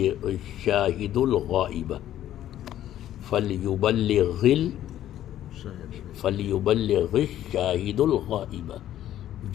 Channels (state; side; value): quieter; right; 12.2 dB